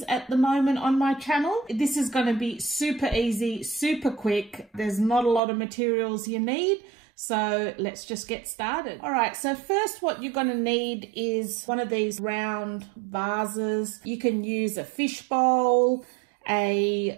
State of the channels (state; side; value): drops out; left; at 5.4 s